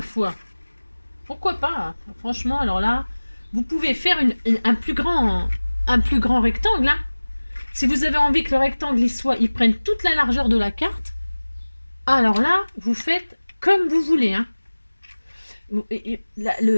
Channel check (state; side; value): inverted; both; correlation -1.00